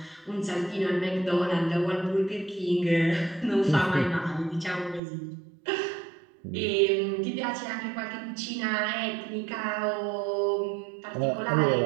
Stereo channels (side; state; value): left; drops out; at 5.0 s